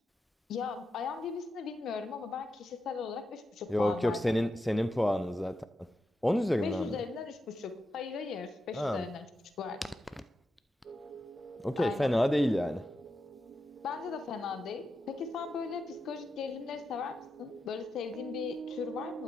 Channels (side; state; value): both; normal; correlation 0.87